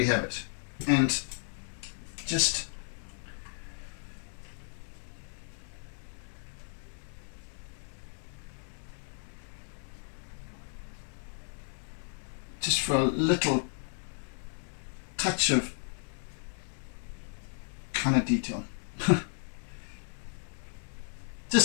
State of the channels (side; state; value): right; silent; 55 dB below the other